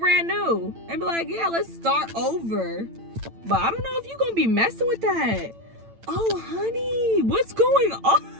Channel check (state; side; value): late; left; 8.9 ms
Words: brand new and be like, yeah, let's start over. But I don't know if you're going to be messing with that. Oh, honey, what's going